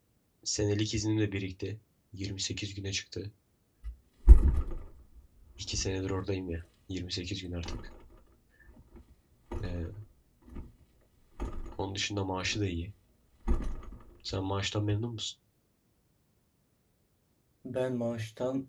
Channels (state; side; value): identical; both; correlation 1.00